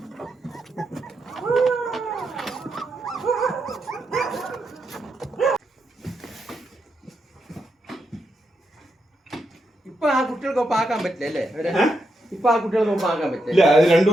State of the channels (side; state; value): both; normal; correlation 0.83